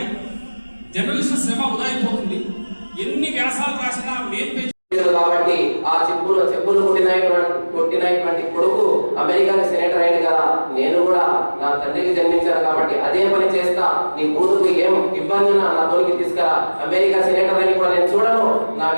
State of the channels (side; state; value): both; inverted; correlation -1.00